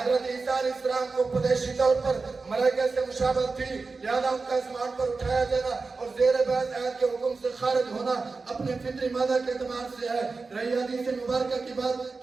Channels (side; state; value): left; quieter; 4.1 dB